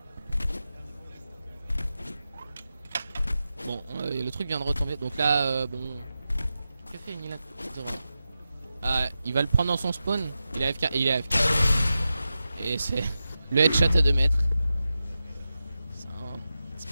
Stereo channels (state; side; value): inverted; both; correlation -0.91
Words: Bon le truc vient de retomber donc là bon. Que fait Nilan? Ah il va le prendre dans son spawn. Il est AFK et il est AFK. Et c'est le headshot à 2 mètres. C'est